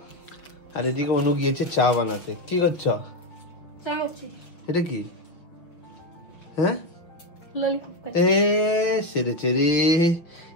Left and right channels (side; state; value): right; late; 6.0 ms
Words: আর এদিকে অনু গিয়েছে চা বানাতে। কি করছো? চা হচ্ছে। এটা কি? হ্যাঁ, ললিপপ খাচ্ছি। এ সেরে চেরি,